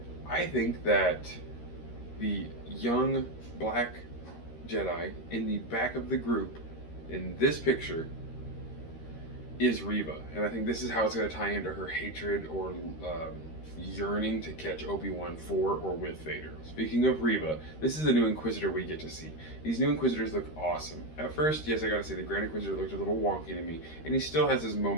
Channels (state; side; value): late; right; 13 ms